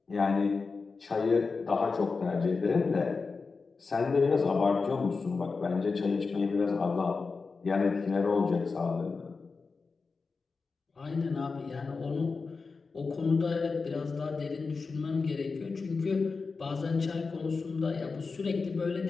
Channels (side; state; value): right; quieter; 4.5 dB